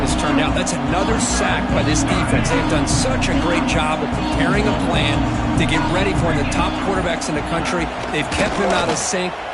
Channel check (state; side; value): identical; both; correlation 1.00